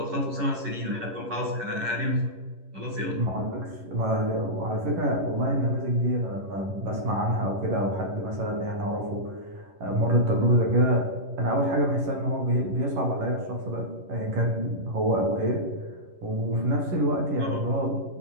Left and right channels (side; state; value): left; late; 11 ms